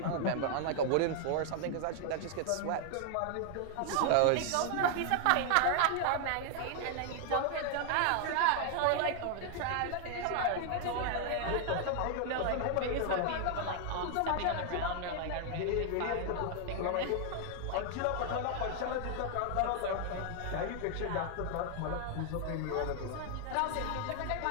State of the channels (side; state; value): both; different; correlation 0.00